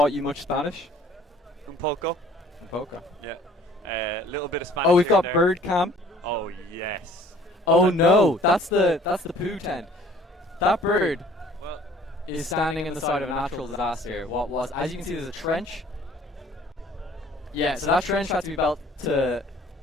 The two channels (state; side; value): normal; both; correlation 0.54